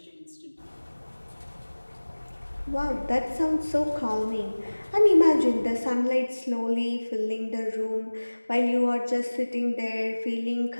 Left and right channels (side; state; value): both; inverted; correlation -1.00